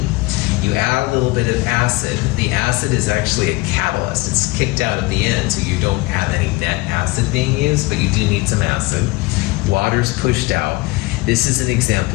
You add a little bit of acid. The acid is actually a catalyst. It's kicked out at the end, so you don't have any net acid being used, but you do need some acid. Water's pushed out. This is an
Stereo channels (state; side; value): quieter; right; 22.3 dB